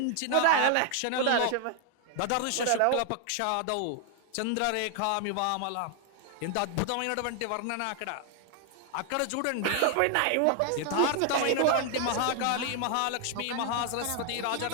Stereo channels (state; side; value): different; both; correlation 0.00